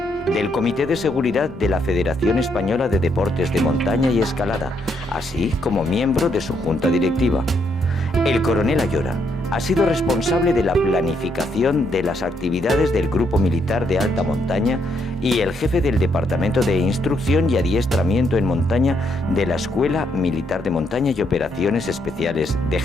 del Comité de Seguridad de la Federación Española de Deportes de Montaña y Escalada, así como miembro de su junta directiva. El coronel Ayora ha sido responsable de la planificación de las actividades del Grupo Militar de Alta Montaña y el jefe del Departamento de Instrucción y Adiestramiento en Montaña de la Escuela Militar de Montaña y Operaciones Especiales de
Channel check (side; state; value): both; normal; correlation 0.75